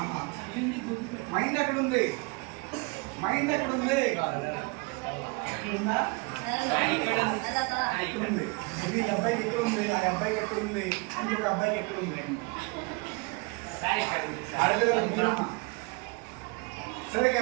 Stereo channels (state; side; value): quieter; left; 29.8 dB